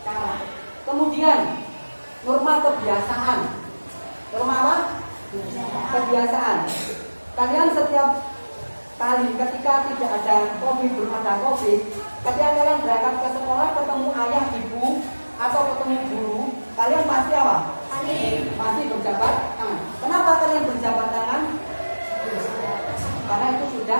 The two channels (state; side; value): inverted; both; correlation -1.00